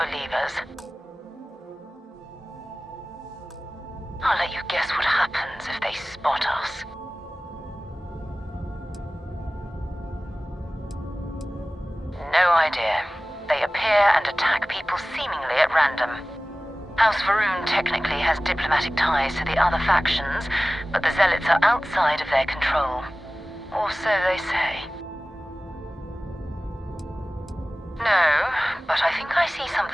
I'll let you guess what happens if they spot us. No idea. They appear and attack people seemingly at random. House Varun technically has diplomatic ties to the other factions, but the zealots are outside of their control. Or so they say. No, but I think I see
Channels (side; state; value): both; normal; correlation 0.97